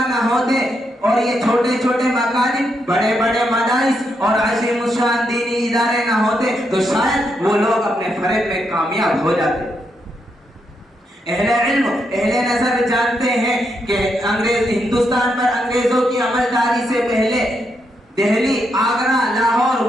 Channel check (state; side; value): normal; both; correlation 0.80